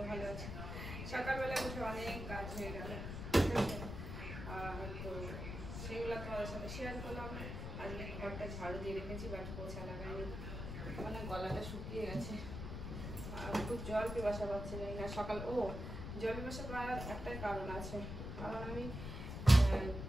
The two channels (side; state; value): left; noise; rumble, 6 dB below the sound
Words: ভালো আছি। সকালবেলা উঠে অনেক কাজ হয়ে গেল, তো সেগুলো তোমাদের সাথে শেয়ার করলাম। আজকে ঘরটা ঝাড়ু দিয়ে রেখেছি, বাট পোছা লাগাইনি, মানে গলাটা শুকিয়ে গেছে আর খুব জল পিপাসা পাচ্ছে না সকাল। জল পিপাসা পাওয়ার একটাই কারণ আছে, কারণ আমি